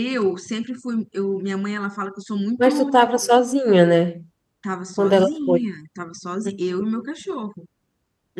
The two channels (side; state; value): both; identical; correlation 1.00